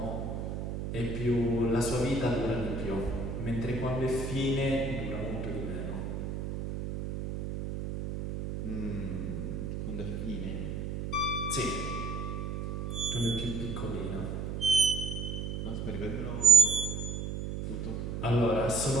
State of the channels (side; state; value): right; noise; hum, 4 dB below the sound